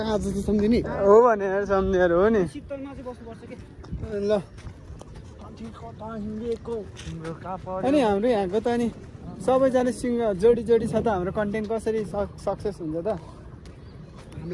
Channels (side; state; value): both; identical; correlation 1.00